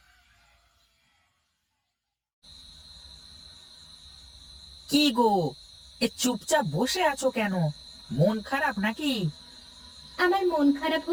কি গো, এ চুপচাপ বসে আছো কেন? মন খারাপ নাকি? আমার মন খারাপ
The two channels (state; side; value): identical; both; correlation 1.00